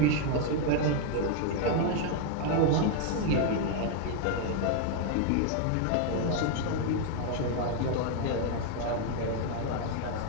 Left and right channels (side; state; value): both; different; correlation 0.00